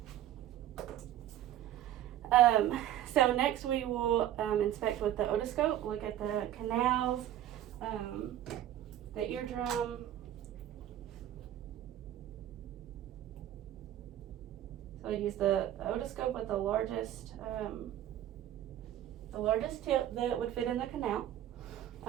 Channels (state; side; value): quieter; left; 12.2 dB